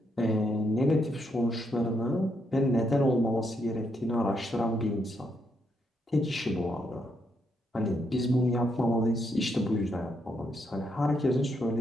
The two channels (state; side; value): normal; both; correlation 0.78